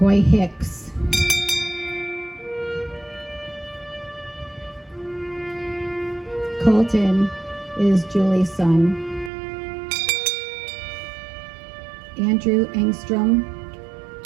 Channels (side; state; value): left; drops out; at 9.3 s